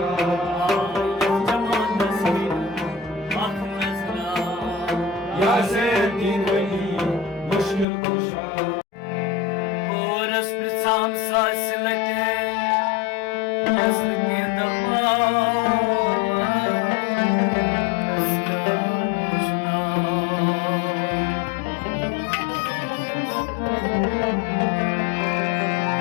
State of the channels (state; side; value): drops out; right; at 7.9 s